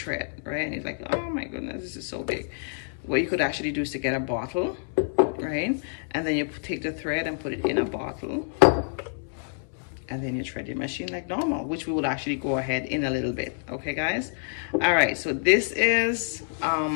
right, and it's like, oh my goodness, this is so big, what you could actually do is to get a bottle, right, and then you take the thread and put it in a bottle, and then you thread your machine like normal, which we would actually go ahead in a little bit. Okay guys, all right, so this is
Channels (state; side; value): silent; right; digital silence